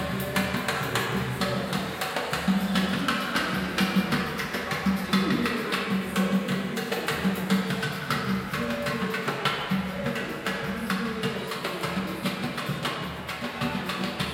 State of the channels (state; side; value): identical; both; correlation 1.00